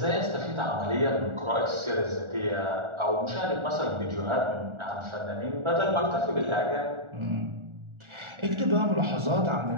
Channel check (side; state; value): left; late; 1.4 ms